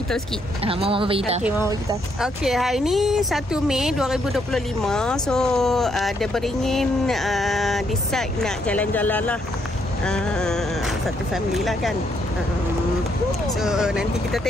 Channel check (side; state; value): both; normal; correlation 0.73